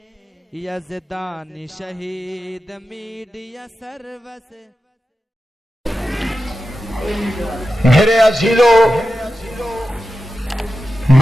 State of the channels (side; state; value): both; normal; correlation 0.92